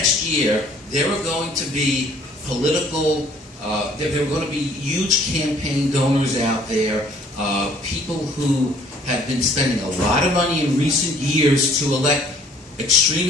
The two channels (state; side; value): normal; both; correlation 0.58